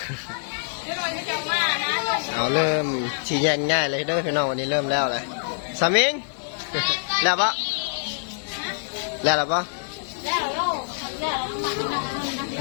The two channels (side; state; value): right; silent; 62 dB below the other